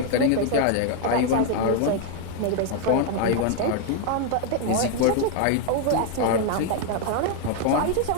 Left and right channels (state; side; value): different; both; correlation 0.00